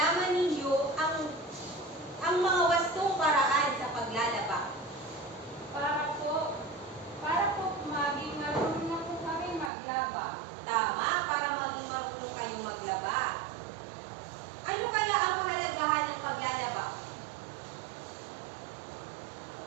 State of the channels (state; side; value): drops out; left; at 9.7 s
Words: ninyo ang mga wastong paraan sa paglalaba. Para po maging marunong na po kami maglaba. Tama, para maging marunong kayong maglaba. Ano kaya ang kahalagahan ng paglalaba?